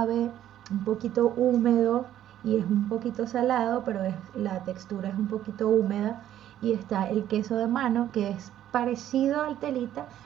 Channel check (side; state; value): left; quieter; 11.7 dB